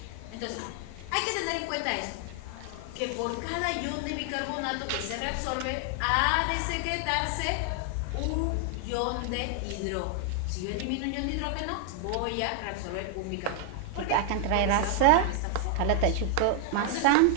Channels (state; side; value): different; both; correlation 0.00